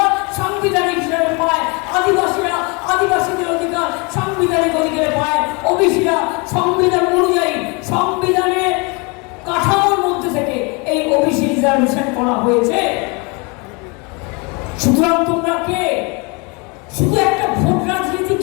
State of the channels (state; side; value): quieter; right; 30.2 dB